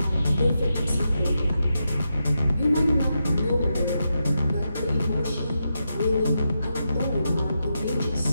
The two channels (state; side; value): inverted; both; correlation -0.86